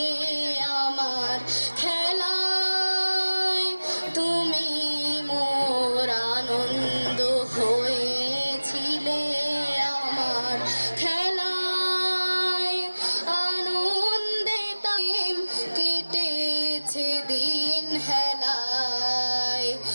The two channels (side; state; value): both; inverted; correlation -1.00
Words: আমার খেলায়, তুমি মোর আনন্দ হয়েছিলে আমার খেলায়। আনন্দে তাই কেটেছে দিন হেলায়।